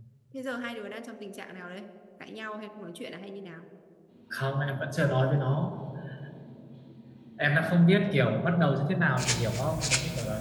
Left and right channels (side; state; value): both; identical; correlation 1.00